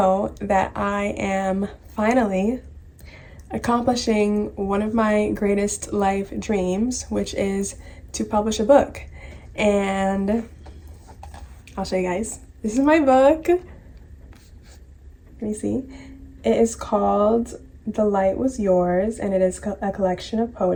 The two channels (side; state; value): both; identical; correlation 1.00